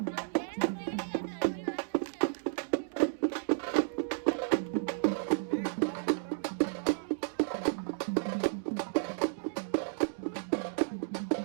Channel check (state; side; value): silent; left; digital silence